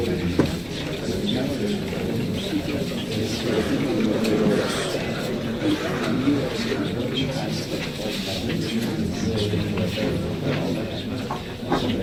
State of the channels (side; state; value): both; identical; correlation 1.00